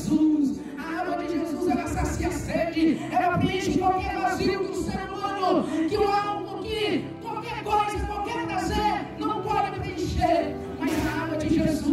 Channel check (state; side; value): identical; both; correlation 1.00